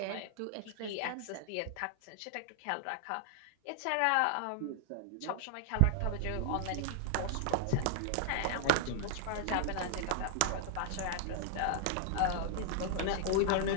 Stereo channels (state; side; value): different; both; correlation 0.00